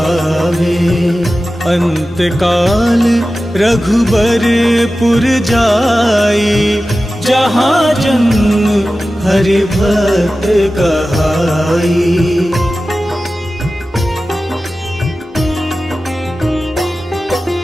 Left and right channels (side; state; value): both; normal; correlation 0.95